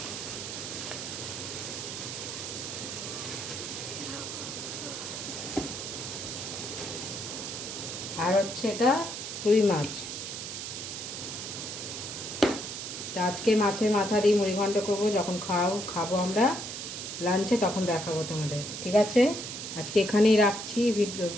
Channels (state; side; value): noise; right; hiss, 6 dB below the sound